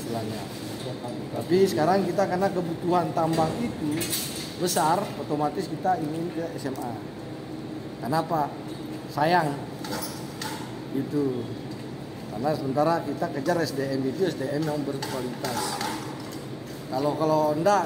Tapi sekarang kita karena kebutuhan tambang itu besar, otomatis kita ingin ke SMA. Kenapa? Sayang itu. Karena sementara kita kejar SDM itu SDM yang berkualitas. Kalau enggak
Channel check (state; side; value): noise; right; hum, 26 dB below the sound